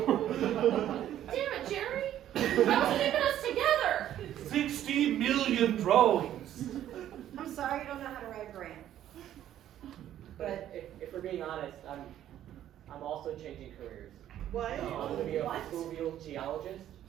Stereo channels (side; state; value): left; quieter; 11.6 dB